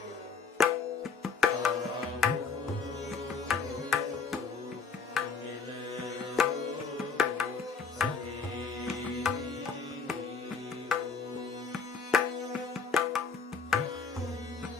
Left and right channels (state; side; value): quieter; right; 5.4 dB